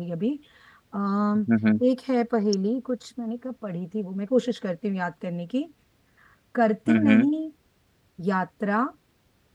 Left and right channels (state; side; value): identical; both; correlation 1.00